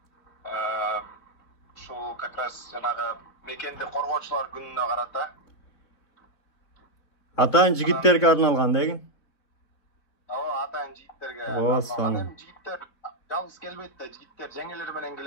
Шул как раз жанагы мекенди коргоочулар күнүнө карата. Атайын жигиттерге арналган деген? Ооба, атайын жигиттерге арналган. Эми жигиттер жалгыз келбейт да, жигиттер жеңелери менен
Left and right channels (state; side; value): late; right; 4.3 ms